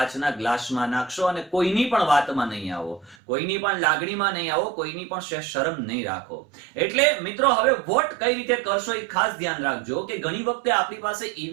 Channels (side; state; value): left; drops out; at 3.2 s